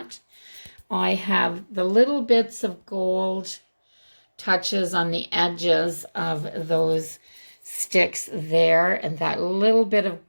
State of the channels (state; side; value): inverted; both; correlation -1.00